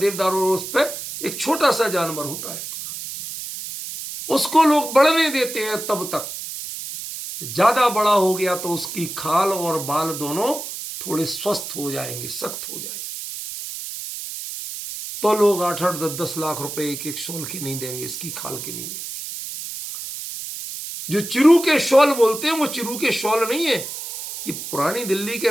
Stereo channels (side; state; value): right; noise; hiss, 8 dB below the sound